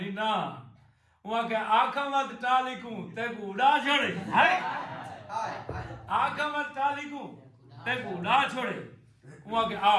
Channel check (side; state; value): both; identical; correlation 1.00